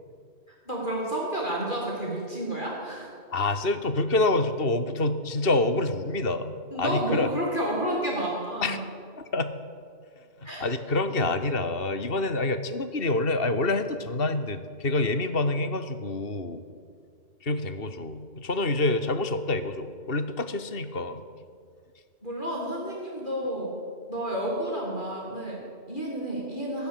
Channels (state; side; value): late; right; 2.7 ms